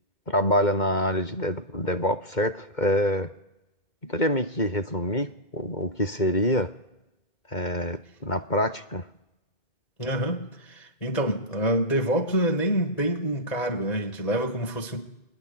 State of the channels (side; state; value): right; late; 2.1 ms